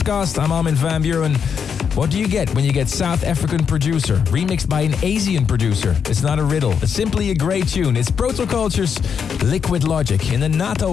I'm Armin van Buuren. What do you get when you get South African producer remixed by an Asian producer? It's not a riddle. It's simply a great tune. It's Protoculture's Liquid Logic in the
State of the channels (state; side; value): quieter; right; 6.9 dB